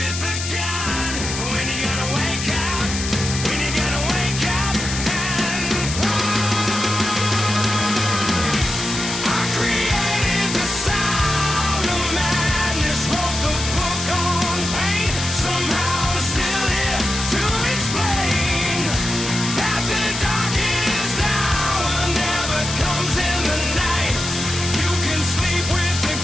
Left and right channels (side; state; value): left; noise; hiss, 5 dB below the sound